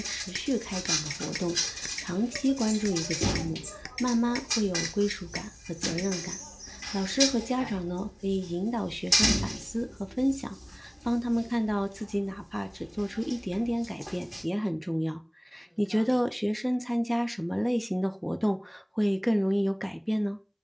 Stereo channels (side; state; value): both; identical; correlation 1.00